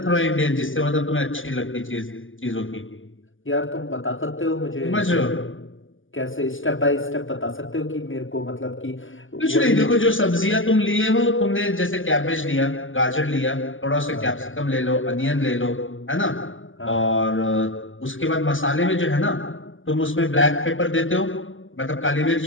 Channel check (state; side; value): late; right; 0.58 ms